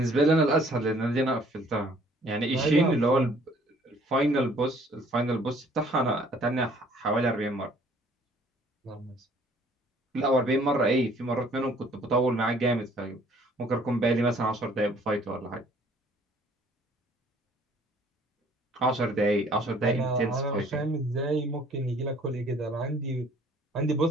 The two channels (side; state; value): both; normal; correlation 0.58